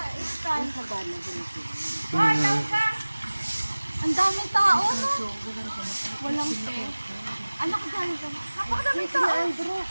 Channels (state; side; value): inverted; both; correlation -1.00